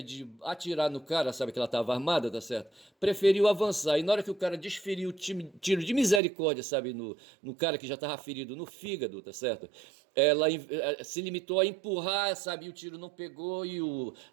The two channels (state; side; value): drops out; left; at 6.2 s